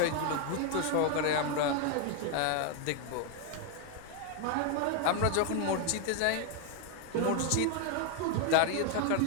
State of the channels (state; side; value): different; both; correlation 0.01